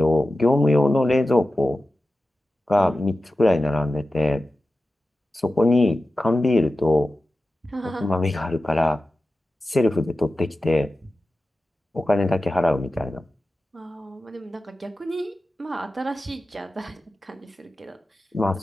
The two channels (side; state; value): both; normal; correlation 0.94